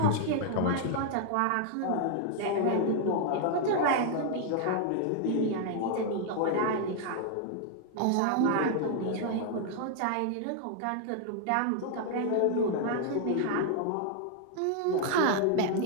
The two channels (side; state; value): both; different; correlation 0.00